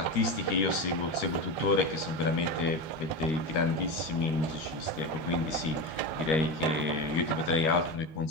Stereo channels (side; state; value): right; late; 13 ms